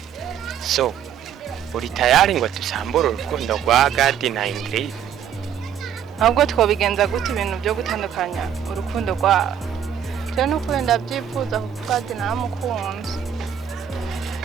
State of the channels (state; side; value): quieter; left; 9.1 dB